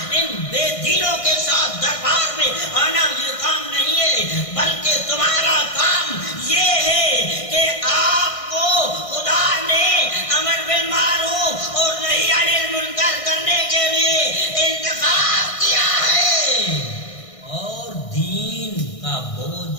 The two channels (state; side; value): late; right; 1.6 ms